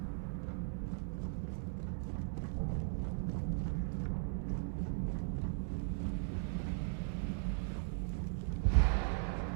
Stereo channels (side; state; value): left; silent; 52 dB below the other